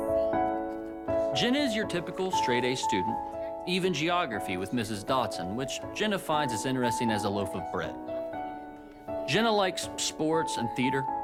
Jenna is your typical straight-A student, even geography with Mrs. Dotson, which Jenna finds as interesting as a loaf of bread. Jenna likes sports and theater.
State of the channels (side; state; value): both; identical; correlation 1.00